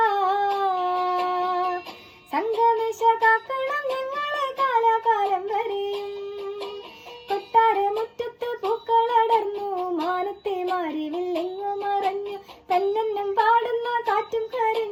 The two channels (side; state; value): both; identical; correlation 1.00